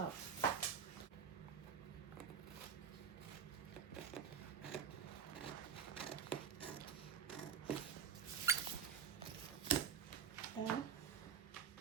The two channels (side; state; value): left; quieter; 7.2 dB